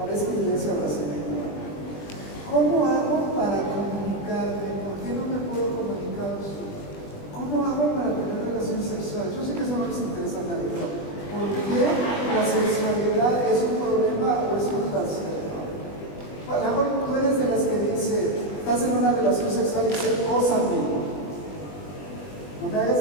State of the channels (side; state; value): right; late; 20 ms